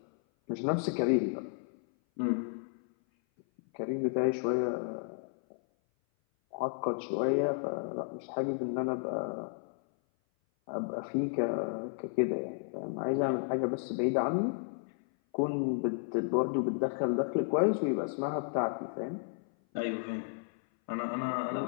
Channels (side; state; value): right; silent; 56 dB below the other